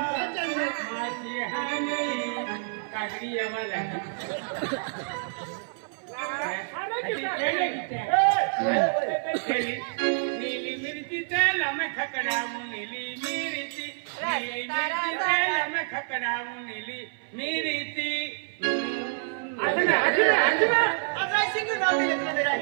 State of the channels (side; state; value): left; silent; 59 dB below the other